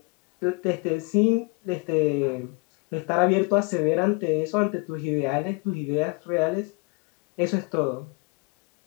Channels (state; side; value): quieter; right; 30.1 dB